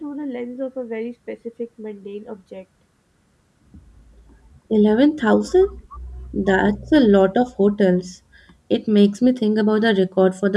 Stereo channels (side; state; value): both; identical; correlation 1.00